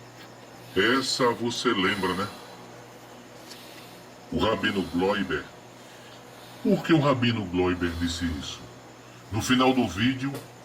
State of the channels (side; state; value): both; identical; correlation 1.00